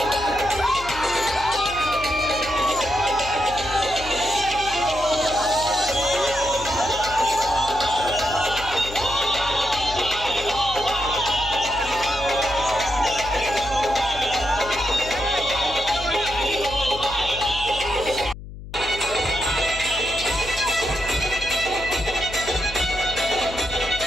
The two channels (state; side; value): noise; left; hum, 13 dB below the sound